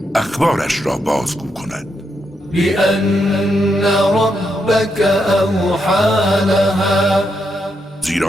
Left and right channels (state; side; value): normal; both; correlation 0.81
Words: اخبارش را بازگو کند. بأن ربك أوحى لها،